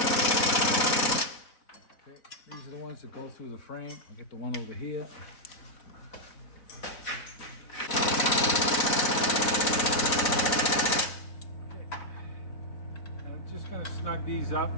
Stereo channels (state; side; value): late; right; 4.1 ms